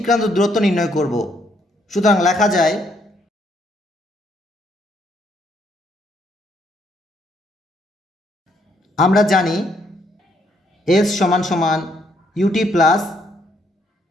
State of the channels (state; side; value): normal; both; correlation 0.71